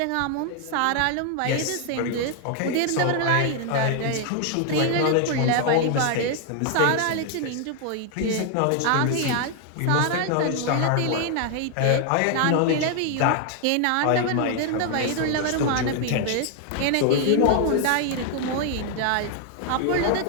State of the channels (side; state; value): both; different; correlation 0.00